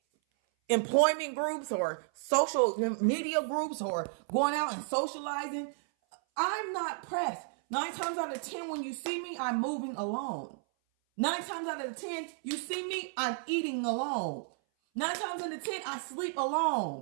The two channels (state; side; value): silent; left; 56 dB below the other